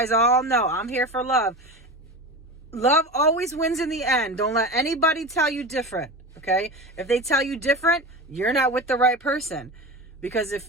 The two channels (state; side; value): normal; both; correlation 0.28